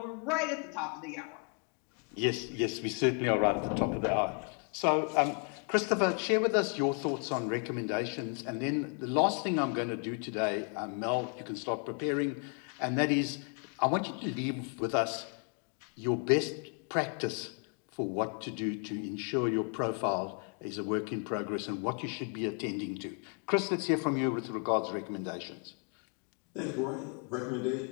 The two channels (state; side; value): quieter; right; 38.7 dB